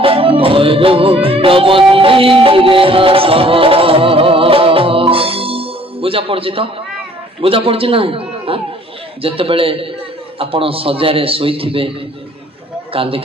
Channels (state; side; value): normal; both; correlation 0.57